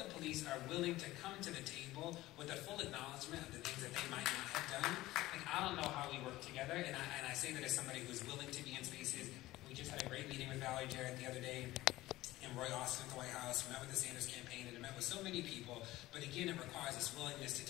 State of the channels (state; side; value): quieter; right; 17.3 dB